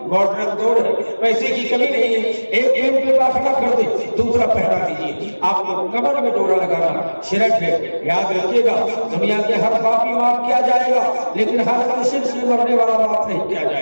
ماڈرن دور ہے، پیسے کی کمی نہیں ہے، ایک پینٹ پہ داخلہ کر دے دوسرا پہنا دیجیے۔ آپ کو کمر میں ڈورا لگانا شرک ہے۔ یاد رکھیے گا دنیا کے ہر پاپی معاف کیا جائے گا، لیکن ہر شرک سے مرنے والا معاف نہیں کیا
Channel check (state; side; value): inverted; both; correlation -1.00